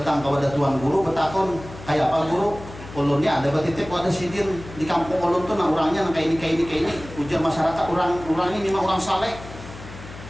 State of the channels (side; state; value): left; noise; hum, 15 dB below the sound